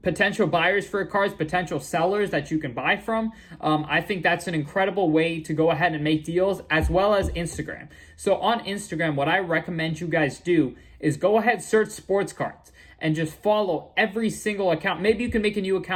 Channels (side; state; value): both; identical; correlation 1.00